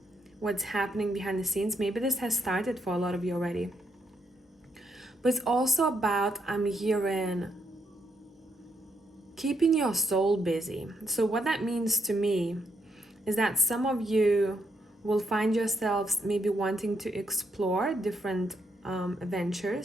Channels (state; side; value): normal; both; correlation 0.78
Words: what's happening behind the scenes. Maybe this has started for a lot of you already. But it's also about, I'm hearing, keeping your soul busy. So what that means to me is that some of you will find yourselves maybe wanting to explore different